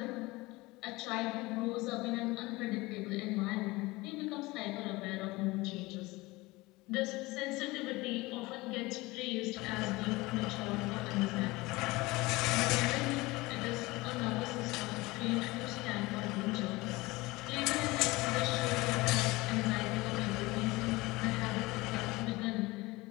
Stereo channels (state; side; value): quieter; right; 21.6 dB